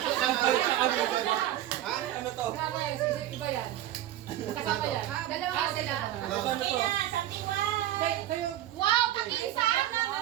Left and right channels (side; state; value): left; quieter; 13.2 dB